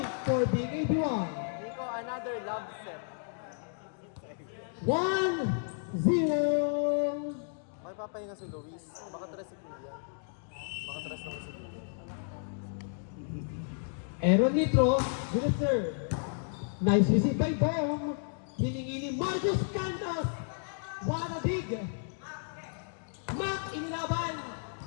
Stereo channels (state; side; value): silent; right; digital silence